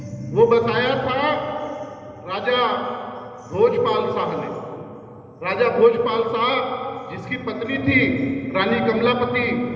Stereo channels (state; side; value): identical; both; correlation 1.00